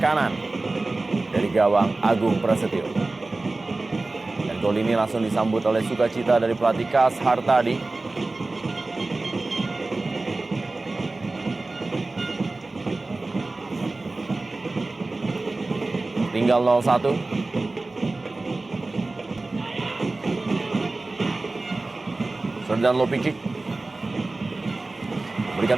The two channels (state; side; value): quieter; left; 3.2 dB